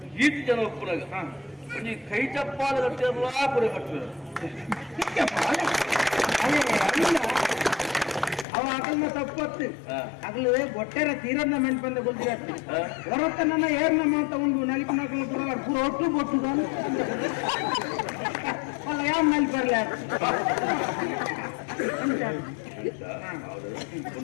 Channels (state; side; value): drops out; right; at 8.5 s